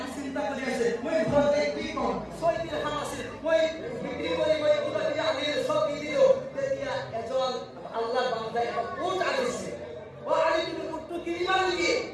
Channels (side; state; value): both; identical; correlation 1.00